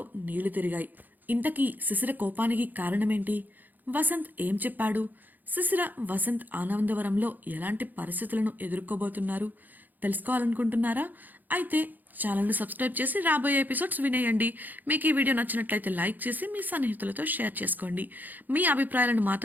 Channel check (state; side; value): late; left; 0.085 ms